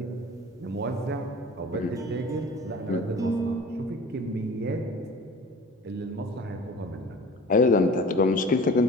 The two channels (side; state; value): both; normal; correlation 0.42